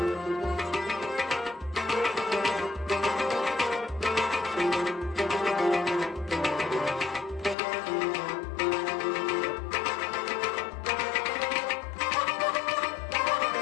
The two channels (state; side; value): drops out; right; at 7.6 s